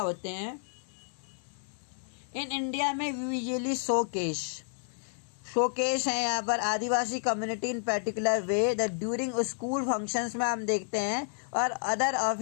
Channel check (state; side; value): silent; right; 57 dB below the other